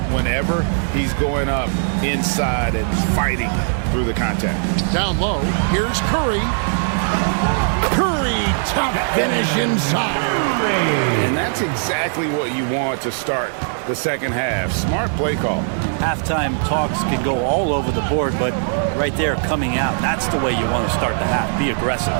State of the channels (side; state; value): left; silent; 66 dB below the other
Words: whenever he's going up inside and fighting through the contact. Down low, here's Curry. Curry, top finish inside. And that's exactly what you want to start the second half. Smart play call. Halftime talks can go all over the board, but right there coming out, that's the way you want to start the half. Be aggressive.